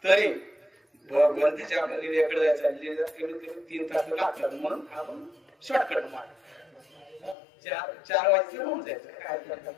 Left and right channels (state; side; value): drops out; right; at 7.4 s